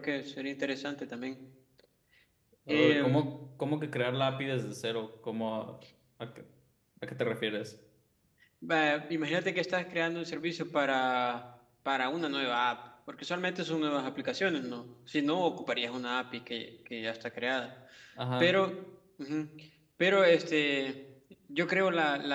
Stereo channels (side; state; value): both; identical; correlation 1.00